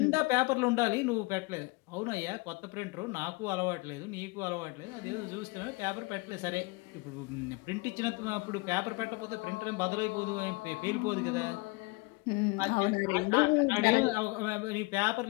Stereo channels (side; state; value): right; quieter; 26.8 dB